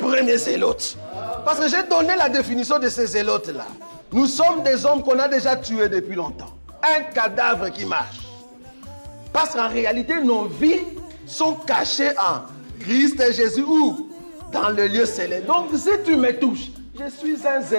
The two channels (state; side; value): inverted; both; correlation -1.00